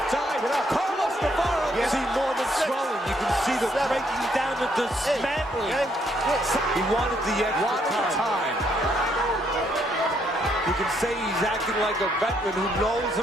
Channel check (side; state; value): both; normal; correlation 0.72